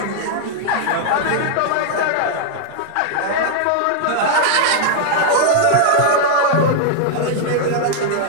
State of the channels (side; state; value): both; different; correlation -0.01